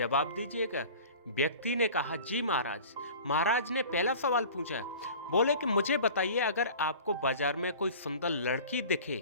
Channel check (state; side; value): inverted; both; correlation -0.41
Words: दीजिएगा। व्यक्ति ने कहा, जी महाराज। महाराज ने पहला सवाल पूछा। बोले कि मुझे बताइए, अगर आपको बाजार में कोई सुंदर लड़की